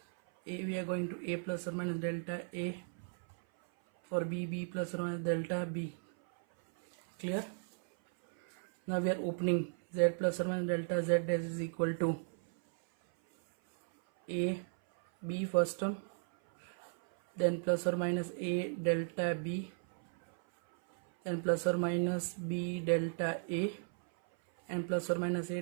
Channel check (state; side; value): silent; left; 54 dB below the other